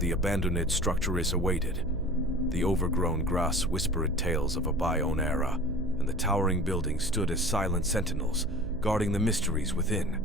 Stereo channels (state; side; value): noise; right; hum, 10 dB below the sound